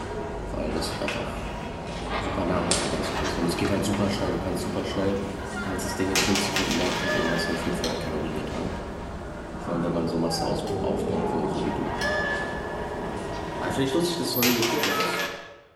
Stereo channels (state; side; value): identical; both; correlation 1.00